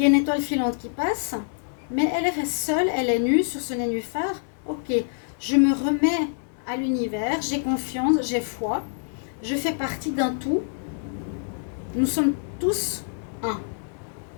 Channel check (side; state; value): right; silent; digital silence